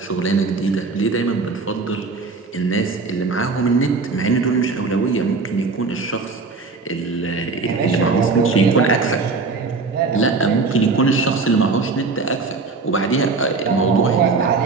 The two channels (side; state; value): left; quieter; 4.1 dB